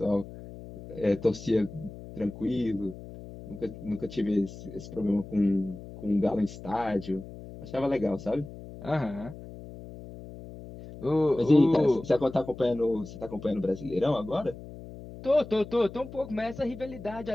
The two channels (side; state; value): left; noise; hum, 14 dB below the sound